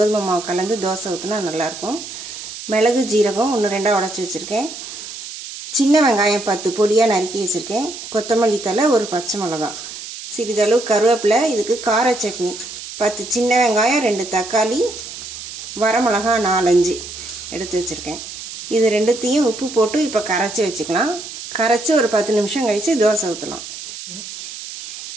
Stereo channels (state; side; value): noise; right; hiss, 11 dB below the sound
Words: மாவு கலந்து தோசை ஊற்றினா நல்லாயிருக்கும். மிளகு ஜீரகம் 1-2 உடச்சி வச்சுருக்கேன். சின்ன வெங்காயம் 10 பொடியாக நறுக்கி வச்சுருக்கேன். கொத்தமல்லி தழை, 1 பச்சை மிளகாய், சிறிதளவு கருவேப்பிலை. இதுக்கு கார சட்னி 10 சின்ன வெங்காயம், 2 தக்காளி, வரமிளகா 4-5 எடுத்து வச்சுருக்கேன். இது ரெண்டுத்தையும் உப்பு போட்டு இப்போ கரைச்சி வச்சுக்கலாம். கரைச்சி ஒரு 10 நிமிஷம் கழித்து தோசை ஊற்றலாம்.